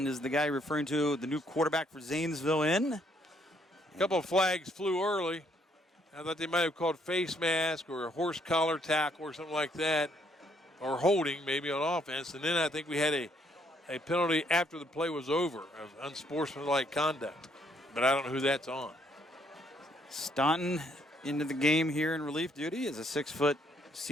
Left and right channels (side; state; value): both; normal; correlation 0.69